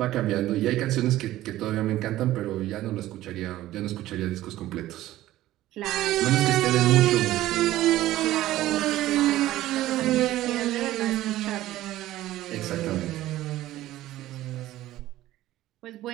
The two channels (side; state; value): left; quieter; 15.0 dB